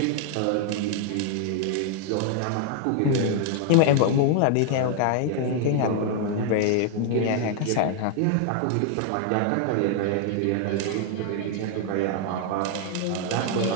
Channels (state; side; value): different; both; correlation 0.00